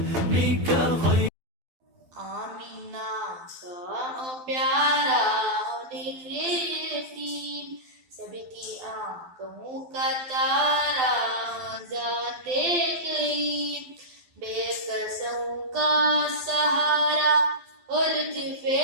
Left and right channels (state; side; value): late; left; 12 ms